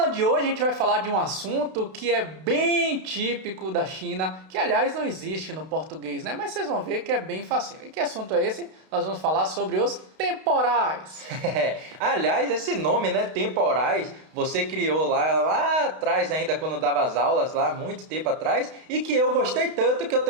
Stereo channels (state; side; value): late; left; 32 ms